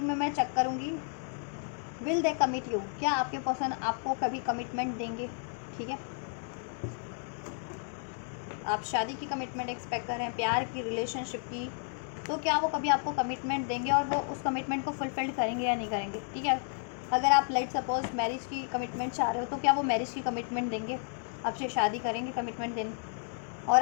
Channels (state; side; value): silent; right; 56 dB below the other